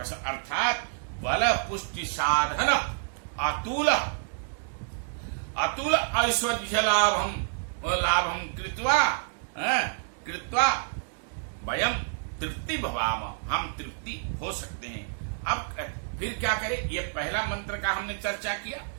बल पुष्टि साधन अतुल अतुल ऐश्वर्य लाभम कृत्वा वयम तृप्ति भवाम, हम तृप्ति हो सकते हैं। अब फिर क्या करें? ये पहला मंत्र का हमने चर्चा किया।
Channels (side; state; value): left; silent; digital silence